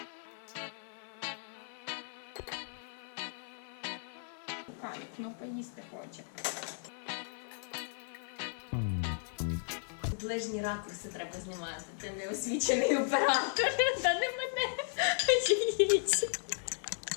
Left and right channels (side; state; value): right; silent; 54 dB below the other